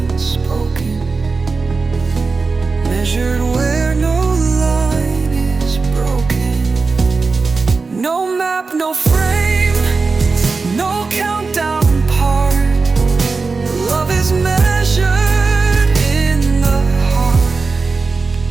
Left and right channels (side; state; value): left; quieter; 4.2 dB